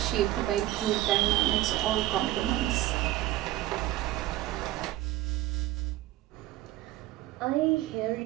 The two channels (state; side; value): quieter; left; 15.6 dB